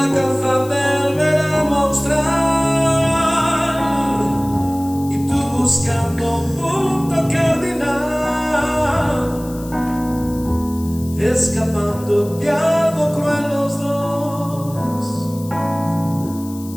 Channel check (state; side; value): noise; left; hiss, 19 dB below the sound